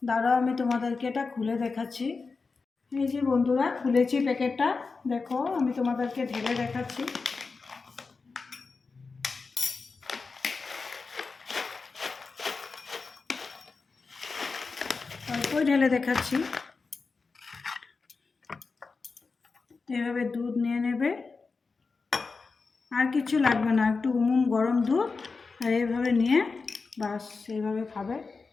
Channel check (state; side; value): quieter; right; 4.4 dB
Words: দাঁড়াও, আমি তোমাদেরকে এটা খুলে দেখাচ্ছি। এই যে বন্ধুরা, খুলেছি প্যাকেটটা, দেখো আমি তোমাদেরকে ঢেলে দেখাচ্ছি। অল্পই ঢেলে দেখাচ্ছি। এভাবে দুধ নিয়ে নেবে, আর কিছু লাগবে না, একটু গরম দুধ, আর এইভাবে নিয়ে বাস এইভাবে খাবে।